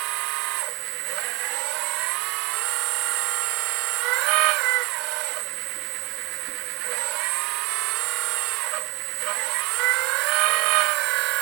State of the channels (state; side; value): quieter; left; 23.8 dB